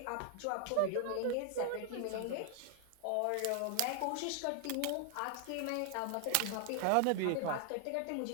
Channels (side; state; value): both; different; correlation 0.00